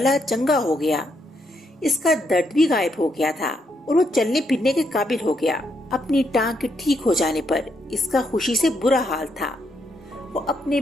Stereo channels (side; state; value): both; normal; correlation 0.77